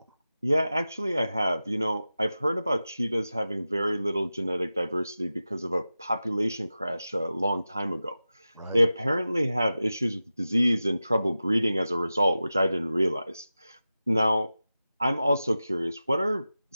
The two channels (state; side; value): inverted; both; correlation -0.94